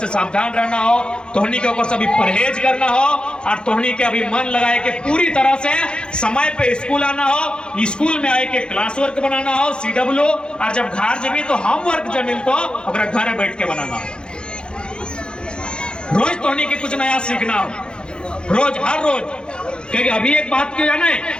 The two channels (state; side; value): late; right; 0.051 ms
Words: सावधान रहना हो, तोहनी के ऊपर से अभी परहेज करना हो, और तोहनी के अभी मन लगाए के पूरी तरह से समय पे स्कूल आना हो, स्कूल में आए के क्लास वर्क बनाना हो, CW, और जब घर जमी तो होमवर्क जब मिल तो घर बैठ के बनाना हो। रोज तोहनी के कुछ नया सीखना हो, रोज हर रोज। क्योंकि अभी एक बात क्यों जाने,